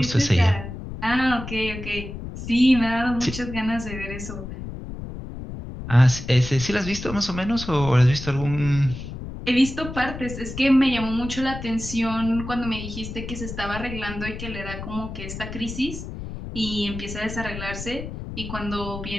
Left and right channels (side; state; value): left; noise; rumble, 9 dB below the sound